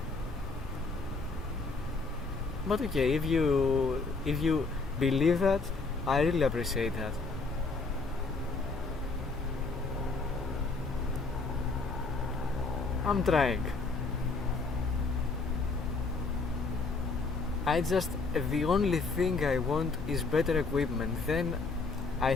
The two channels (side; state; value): right; quieter; 3.9 dB